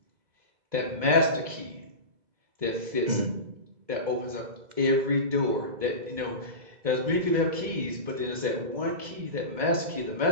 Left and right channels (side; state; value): left; late; 2.0 ms